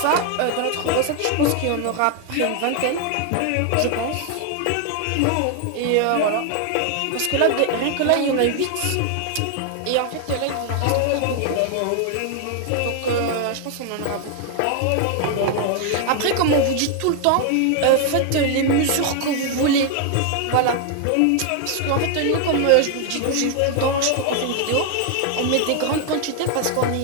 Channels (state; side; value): different; both; correlation 0.00